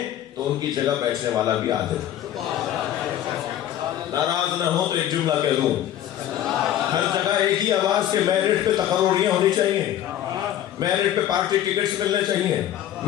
تو ان کی جگہ بیٹھنے والا بھی عادل ہے۔ ناراض نہ ہو تو ایک جملہ کہہ دوں، ہر جگہ ایک ہی آواز کے میرٹ پہ تقرریاں ہونی چاہیے، میرٹ پہ پارٹی ٹکٹس ملنے چاہیے،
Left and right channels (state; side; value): quieter; right; 11.8 dB